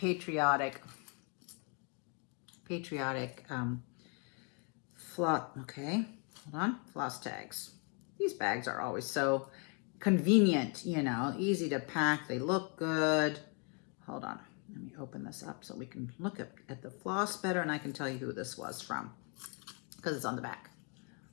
floss tags. These bags are always so convenient, you know, easy to pack. They look good. Hold on. Let me open this up so we can look at the floss better, and I can tell you who this was from because it's on the back.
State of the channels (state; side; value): quieter; right; 36.6 dB